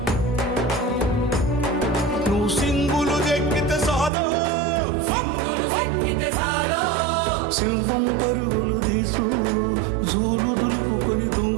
నువ్వు సింగులు ఎక్కితే సాలో, సింహం పరుగులు తీసు, జూలు దులుపుకొని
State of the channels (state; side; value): drops out; left; at 4.1 s